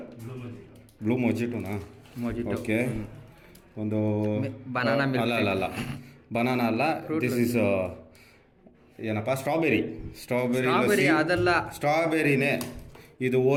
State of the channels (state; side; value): identical; both; correlation 1.00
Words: ಬ್ಲೂ ಮೊಜಿಟೋನಾ? ಓಕೆ. ಒಂದು ಬನಾನಾ ಅಲ್ಲ ಬನಾನಾ ಅಲ್ಲ, ದಿಸ್ ಇಸ್ ಏನಪ್ಪ, ಸ್ಟ್ರಾಬೆರಿ ಅದಲ್ಲ, ಸ್ಟ್ರಾಬೆರಿನೇ ಇದು.